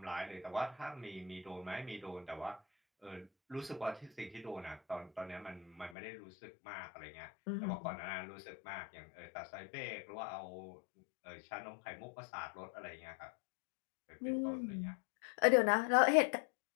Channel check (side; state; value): right; drops out; at 6.0 s